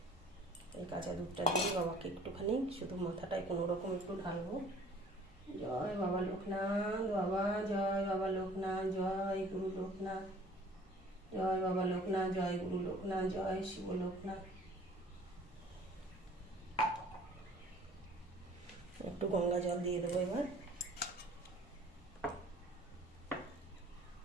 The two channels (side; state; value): both; normal; correlation 0.51